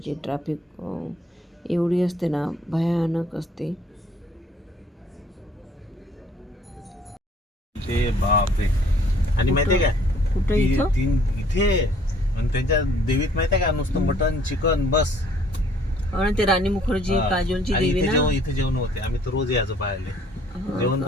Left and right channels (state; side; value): normal; both; correlation 0.59